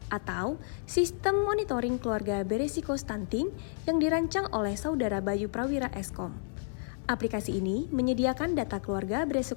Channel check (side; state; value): right; silent; 57 dB below the other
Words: atau Sistem Monitoring Keluarga Beresiko Stunting yang dirancang oleh Saudara Bayu Prawira Eskom. Aplikasi ini menyediakan data keluarga